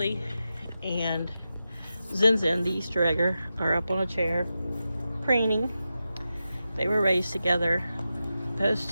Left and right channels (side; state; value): both; inverted; correlation -0.91